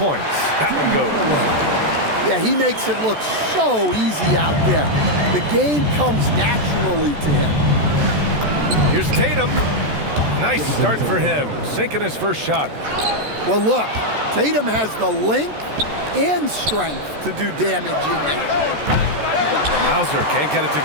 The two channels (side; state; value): left; late; 14 ms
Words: That one goes. Yeah, he makes it look so easy out there. The game comes naturally to him. Here's Tatum. Nice start for him. Sinking his first shot. Well, look, Tatum has the length and strength to do damage in there. Hauser can't get it to